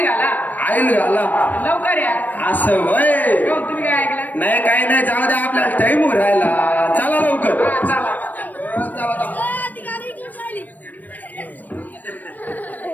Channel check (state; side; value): late; right; 0.084 ms